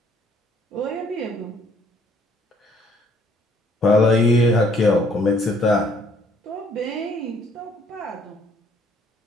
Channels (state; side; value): normal; both; correlation 0.63